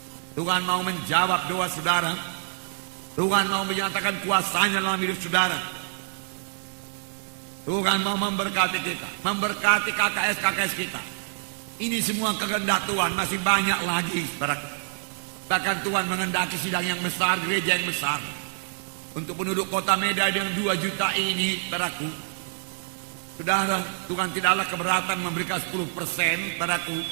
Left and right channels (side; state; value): left; silent; 61 dB below the other